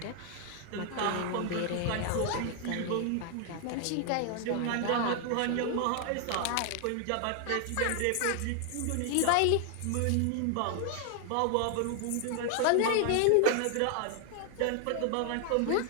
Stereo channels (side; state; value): both; different; correlation 0.00